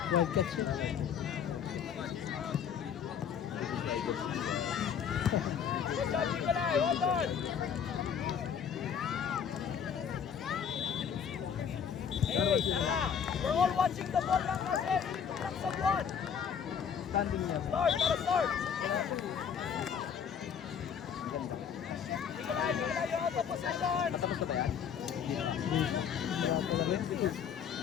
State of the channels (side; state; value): right; quieter; 7.7 dB